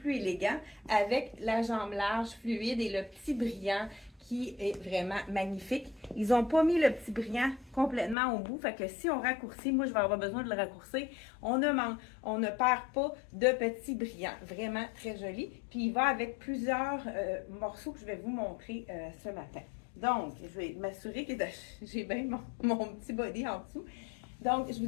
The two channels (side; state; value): right; drops out; at 8.2 s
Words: élégant avec la jambe large, fluide et le petit brillant qui est vraiment magnifique. Ils n'ont pas mis le petit brillant complètement au bout, fait que si on raccourcit, moi je vais avoir besoin de le raccourcir, on ne perd pas de petit brillant. Vraiment très joli. Puis il va avec plusieurs morceaux que je vais vous montrer ce matin. Donc, je vais m'assurer que j'ai bien mon petit body en dessous. Donc, je vous